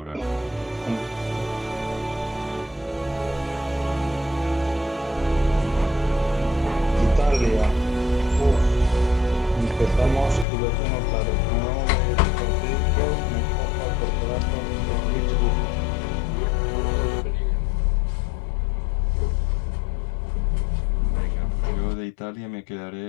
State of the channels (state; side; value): drops out; right; at 10.5 s